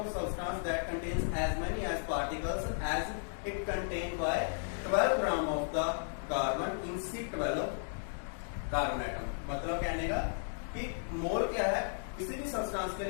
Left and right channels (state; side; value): silent; right; digital silence